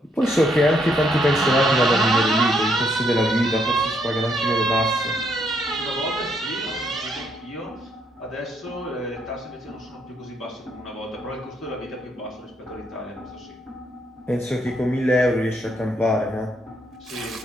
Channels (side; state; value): both; normal; correlation 0.73